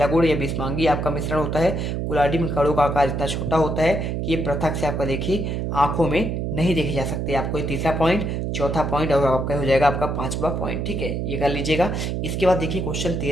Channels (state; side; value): noise; right; hum, 2 dB below the sound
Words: गुण ये विषमांगी आपका मिश्रण होता है। कुलाडी में कणों का आकार इतना छोटा होता है कि ये पृथक से आपका देखिए आंखों में नहीं देखे जा सकते। आपको ये तीसरा पॉइंट, चौथा पॉइंट और आपका हो जाएगा आपका 5वां पॉइंट। ठीक है, ये कर लीजिएगा। इसके बाद देखिए क्वेश्चन